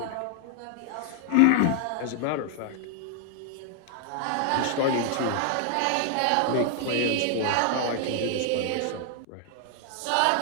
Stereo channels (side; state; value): both; different; correlation 0.00